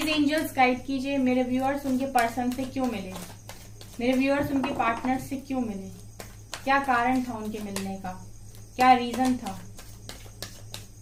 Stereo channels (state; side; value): identical; both; correlation 1.00